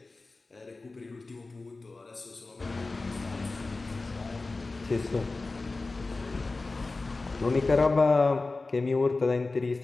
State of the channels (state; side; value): quieter; right; 3.5 dB